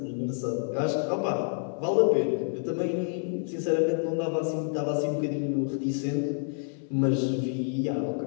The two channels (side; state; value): right; silent; 59 dB below the other